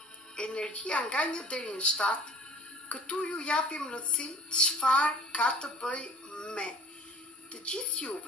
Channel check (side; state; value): both; normal; correlation 0.47